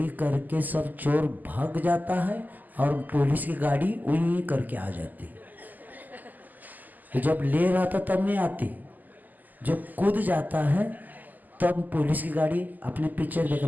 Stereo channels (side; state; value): left; late; 0.084 ms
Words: करके सब चोर भाग जाता है और पुलिस की गाड़ी उन्हीं करके आ जाती। तो जब ले रहा था तब नहीं आती, जब कूद जाता है तब पुलिस की गाड़ी। अपने पिक्चर देखा,